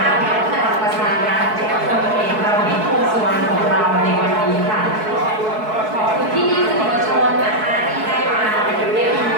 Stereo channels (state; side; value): late; left; 4.6 ms